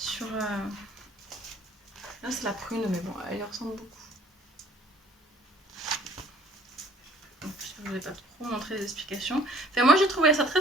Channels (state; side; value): normal; both; correlation 0.56